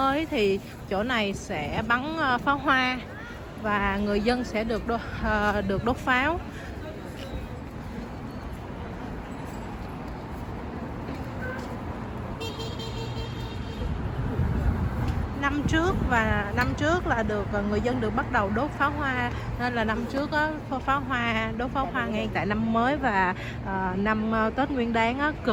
thì chỗ này sẽ bắn pháo hoa và người dân sẽ được đốt pháo. Năm trước là người dân được bắt đầu đốt pháo hoa, nên là năm trước á, đốt pháo hoa ngay tại năm mới và năm Tết Nguyên Đán á,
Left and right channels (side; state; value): both; identical; correlation 1.00